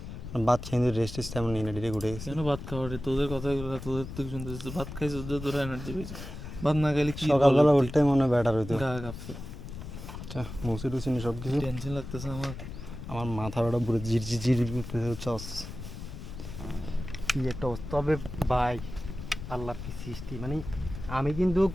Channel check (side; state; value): left; noise; rumble, 10 dB below the sound